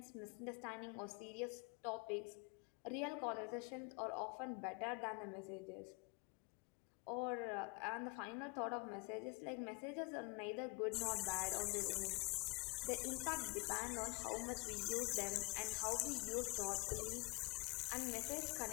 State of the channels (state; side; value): quieter; right; 27.5 dB